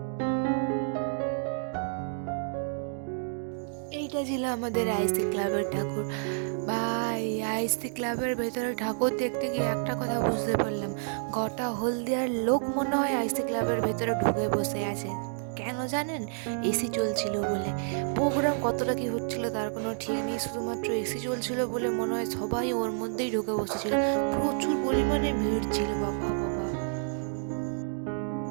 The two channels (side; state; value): left; silent; digital silence